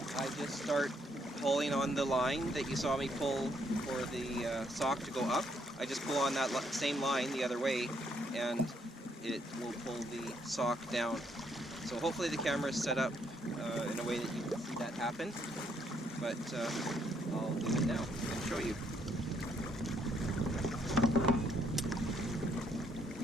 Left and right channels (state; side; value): normal; both; correlation 0.71